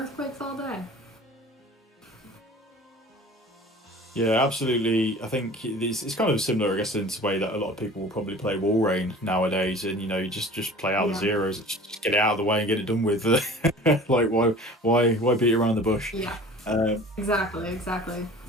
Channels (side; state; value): both; normal; correlation 0.42